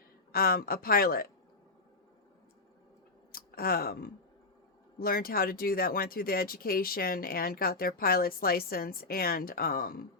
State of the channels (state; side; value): quieter; right; 3.5 dB